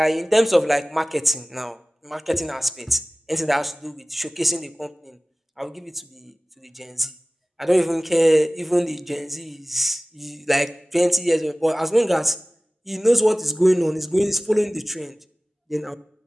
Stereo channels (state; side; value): normal; both; correlation 0.98